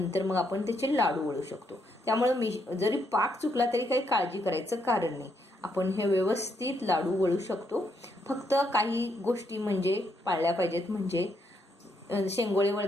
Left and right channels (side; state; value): both; normal; correlation 0.76